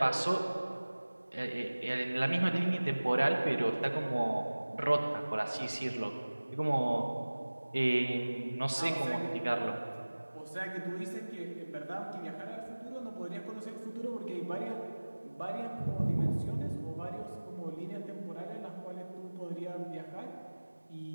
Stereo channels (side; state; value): both; inverted; correlation -1.00